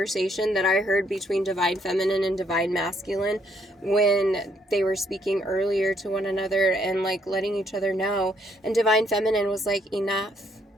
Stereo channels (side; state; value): both; normal; correlation 0.70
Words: that I heard between Divine Feminine and Divine Masculine when they were speaking earlier to one another and like letting each other know. And Divine Feminine was like, enough.